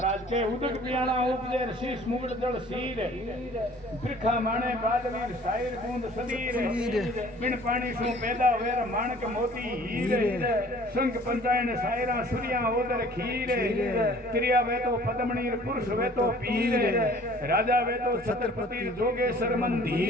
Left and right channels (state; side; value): normal; both; correlation 0.52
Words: के उदक पियाणा उपजे शीश मुगड़ जड़ सीर बिरखा माणे बादवीर सायर बूंद सदीर बिन पानी सु पैदा वेर माणक मोती हीर संग पंचायन सायरा सूर्या ओदर खीर त्रिया वे तो पद्मणीर पुरुष वे तो पीर राजा वे तो छत्रपति जोगेश्वर